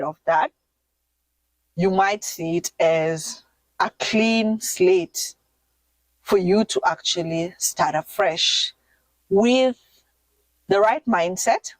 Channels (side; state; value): both; identical; correlation 1.00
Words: of that, you might see it as a clean slate for you to actually start afresh with the right mindset,